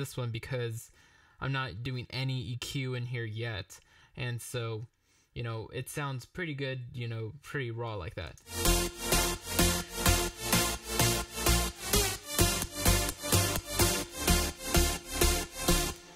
one because I'm not doing any EQ in here yet, and so it sounds pretty good, pretty raw like that.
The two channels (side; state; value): both; identical; correlation 1.00